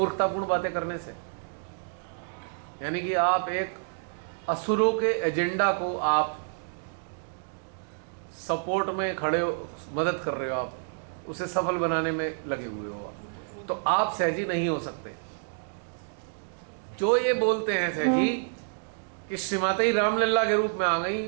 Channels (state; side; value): silent; left; digital silence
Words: बातें करने से? यानी कि आप एक असुरों के एजेंडा को आप सपोर्ट में खड़े हो, मदद कर रहे हो, आप उसे सफल बनाने में लगे हुए हो, तो आप सहजी नहीं हो सकते। जो ये बोलते हैं सहजी कि श्रीमाता रामलला के रूप में आ गई,